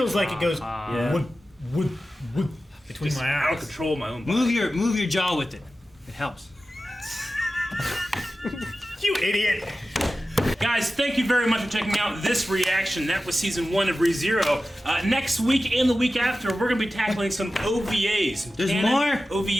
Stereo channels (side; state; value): both; normal; correlation 0.94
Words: like it goes Yeah. wood between my I don't eyes. control my own body. Move your jaw with it. It helps. You idiot! Guys, thank you very much for checking out this reaction. That was season 1 of ReZero. Next week and the week after, we're going to be tackling some OVAs. some There's canon more?